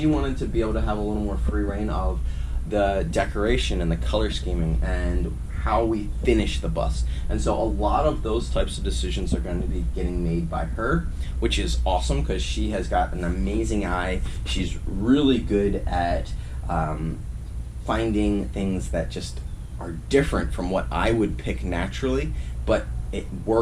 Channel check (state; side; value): identical; both; correlation 1.00